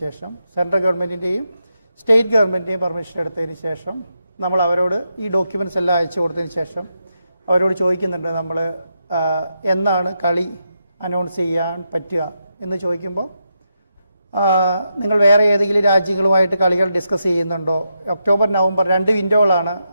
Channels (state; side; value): inverted; both; correlation -0.84